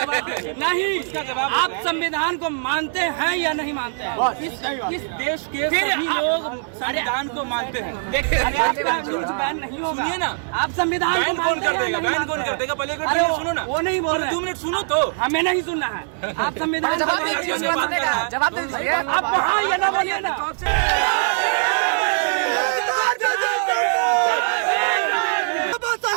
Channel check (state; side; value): silent; left; digital silence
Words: नहीं, आप संविधान को मानते हैं या नहीं मानते हैं? इस देश के सभी लोग संविधान को मानते हैं। अरे आपका न्यूज बैन नहीं होगा। सुनिए ना, आप संविधान बैन कौन कर देगा? बैन कौन कर देगा? पहले सुनो ना। वो नहीं बोल रहे। 2 मिनट सुनो तो। हमें नहीं सुनना है। आप संविधान जवाब आप वहाँ ये ना बोलिए ना।